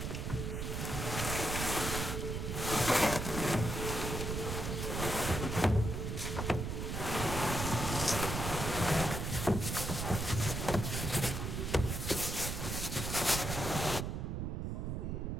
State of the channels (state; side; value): noise; right; rumble, 3 dB below the sound